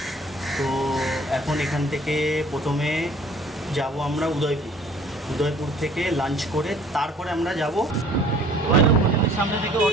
তো এখন এখান থেকে প্রথমে যাব আমরা উদয়পুর থেকে লাঞ্চ করে তারপরে আমরা যাব হোটেলের সামনে থেকে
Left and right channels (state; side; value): normal; both; correlation 0.54